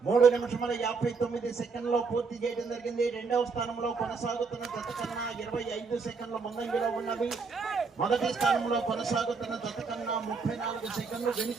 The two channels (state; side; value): quieter; left; 4.8 dB